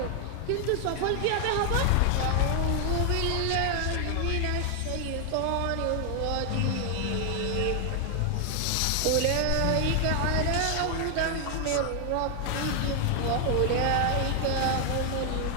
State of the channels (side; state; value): both; different; correlation 0.00